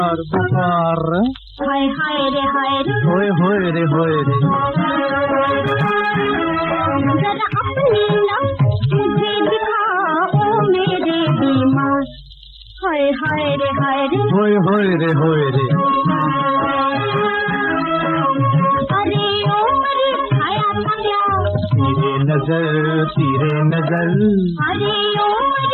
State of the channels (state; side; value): identical; both; correlation 1.00